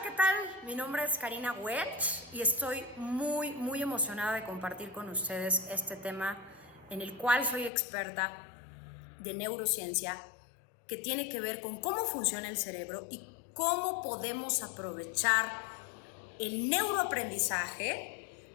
¿qué tal? Mi nombre es Karina Welch y estoy muy emocionada de compartir con ustedes este tema en el cual soy experta de neurociencia que tiene que ver con cómo funciona el cerebro y cómo podemos aprovechar el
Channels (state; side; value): drops out; right; at 7.7 s